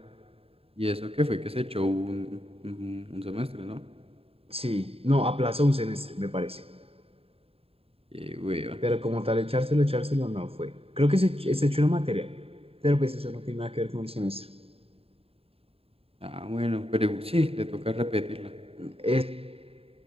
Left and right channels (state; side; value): late; left; 0.28 ms